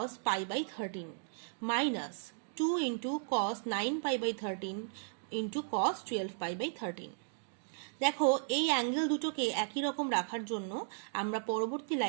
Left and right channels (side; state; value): left; silent; digital silence